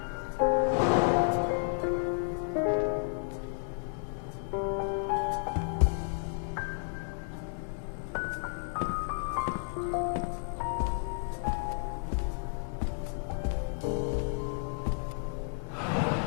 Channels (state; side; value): silent; right; 56 dB below the other